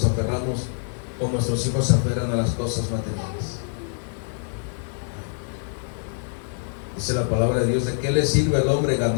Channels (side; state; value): right; silent; digital silence